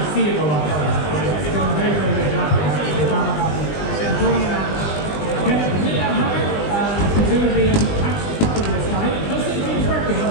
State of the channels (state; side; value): late; right; 20 ms